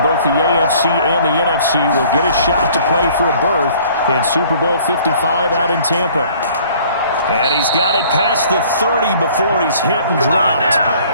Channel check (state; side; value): inverted; both; correlation -0.55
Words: both the AFC and the NFC will get a shot to play for a berth in Super Bowl 55 out in Tampa. And he's got it past the 30 before he's hit and dropped.